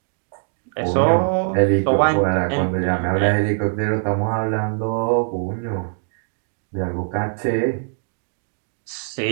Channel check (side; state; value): left; silent; 55 dB below the other